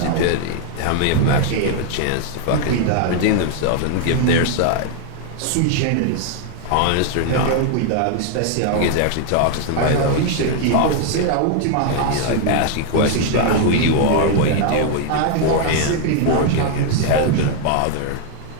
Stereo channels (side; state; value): both; different; correlation 0.00